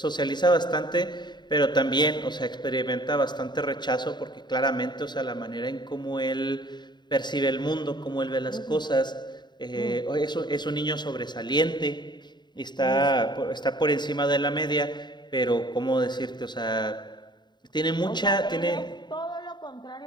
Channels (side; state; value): right; late; 0.21 ms